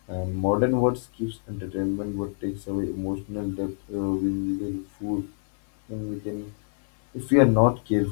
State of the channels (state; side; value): silent; right; 57 dB below the other